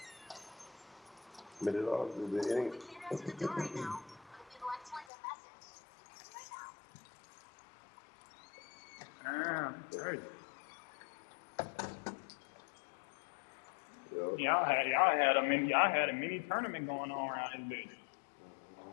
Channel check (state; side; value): drops out; right; at 5.1 s